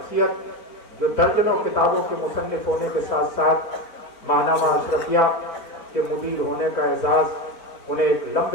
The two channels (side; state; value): right; late; 4.4 ms